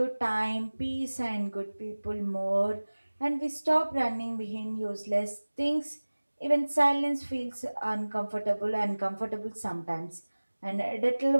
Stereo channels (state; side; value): inverted; both; correlation -1.00